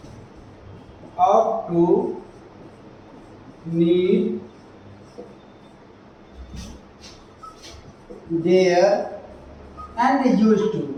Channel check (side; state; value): both; identical; correlation 1.00